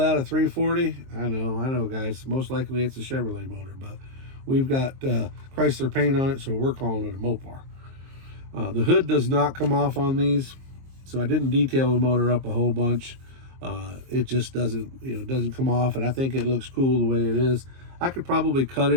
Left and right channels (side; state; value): left; late; 23 ms